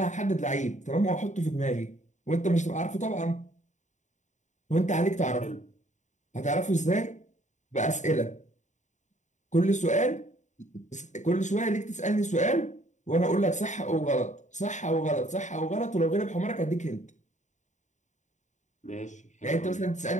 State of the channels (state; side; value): late; right; 0.35 ms